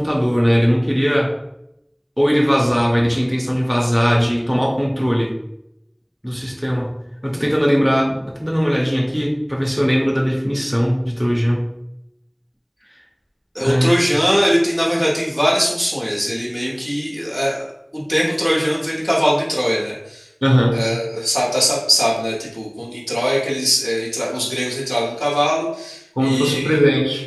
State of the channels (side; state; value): both; identical; correlation 1.00